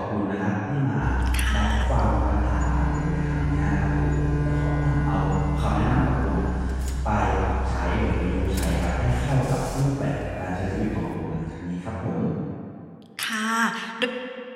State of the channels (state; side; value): identical; both; correlation 1.00